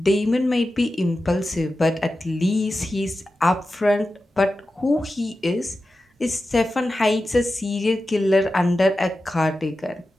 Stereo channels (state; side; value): normal; both; correlation 0.93